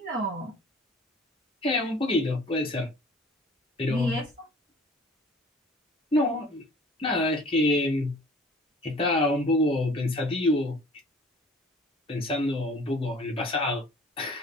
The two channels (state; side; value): normal; both; correlation 0.49